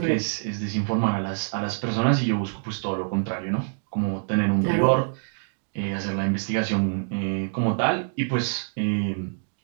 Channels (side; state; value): left; silent; digital silence